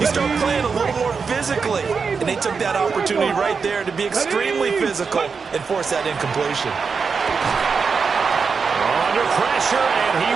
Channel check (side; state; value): left; quieter; 5.4 dB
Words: start playing a little more physically. And they took that opportunity right there to be extremely physical and force that incompletion. Under pressure, and he